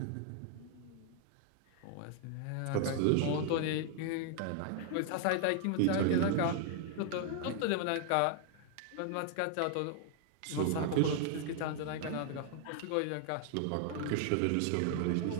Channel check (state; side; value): different; both; correlation 0.00